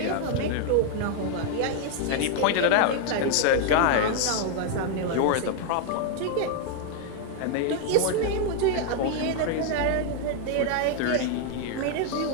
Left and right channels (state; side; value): different; both; correlation 0.00